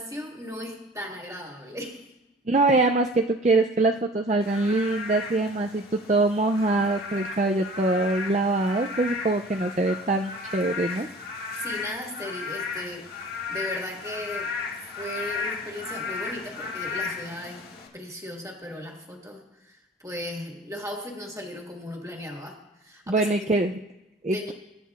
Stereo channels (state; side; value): normal; both; correlation 0.45